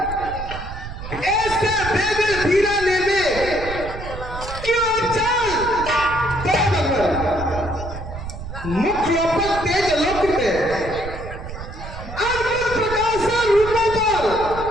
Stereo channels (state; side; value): noise; right; rumble, 10 dB below the sound